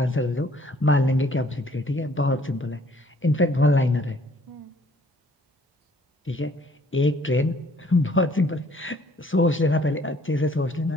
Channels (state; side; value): normal; both; correlation 0.60